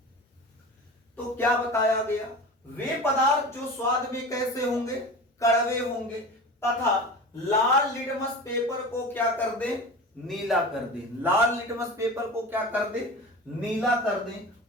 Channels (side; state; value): both; normal; correlation 0.33